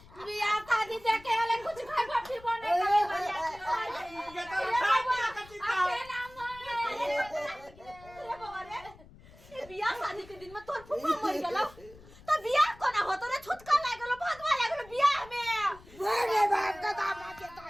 बियाह शादी देखे वाले कुछ खाए फिर बने बियाह शादी के दिन में तोर फुफा मर गेलो तो बियाह कोना होतो रे छुटका लाग गेलो भगवा लाग गेलो बियाह में अरे बाप का दामाद के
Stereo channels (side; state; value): left; noise; rumble, 22 dB below the sound